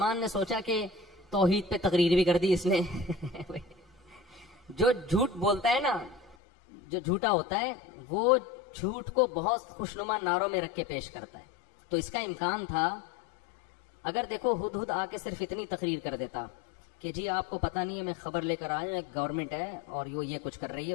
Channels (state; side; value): drops out; right; at 6.4 s